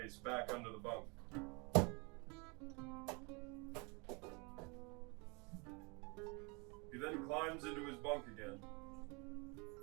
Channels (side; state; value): left; quieter; 30.5 dB